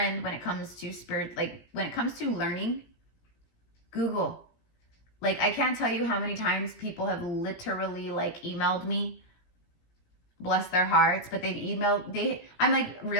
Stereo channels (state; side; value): late; right; 17 ms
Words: when it comes to spirit, like when it comes to learning, Google. Like, I can't tell you how many times people have literally like emailed me, bless their hearts, but I'm like,